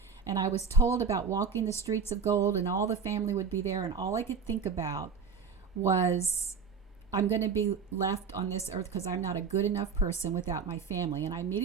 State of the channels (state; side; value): quieter; left; 5.7 dB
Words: And I was told about walking the streets of gold, and all the family would be there. And all I could think about was, I'm going to be left on this earth because I'm not a good enough person without my family. And I